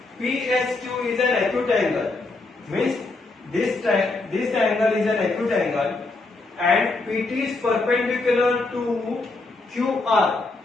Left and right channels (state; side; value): quieter; right; 3.4 dB